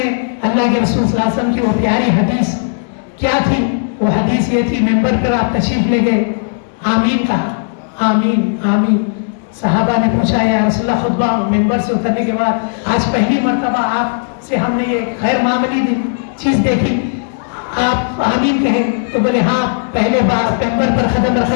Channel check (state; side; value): silent; right; digital silence